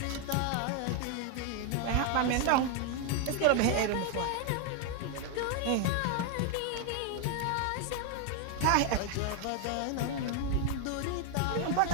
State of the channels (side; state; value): both; different; correlation 0.00